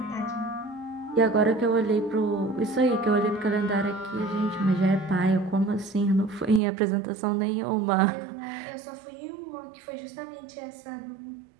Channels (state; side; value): drops out; left; at 6.6 s